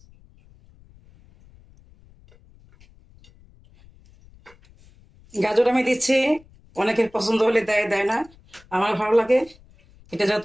গাজর আমি দিচ্ছি, অনেকের পছন্দ হলে দেয়, দেয় না, আমার ভালো লাগে। এটা যত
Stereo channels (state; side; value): noise; left; rumble, 27 dB below the sound